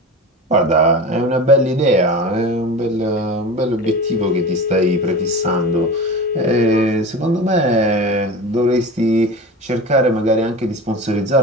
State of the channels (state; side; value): normal; both; correlation 0.31